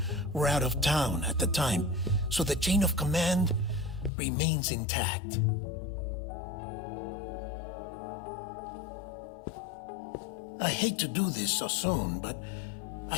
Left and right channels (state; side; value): drops out; right; at 4.1 s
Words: were out of town at the time, so the chain of command remains intact. I hate to do this so soon, but I